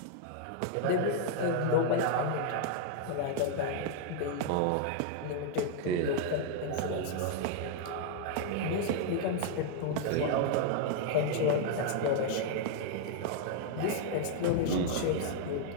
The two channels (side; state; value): both; different; correlation 0.00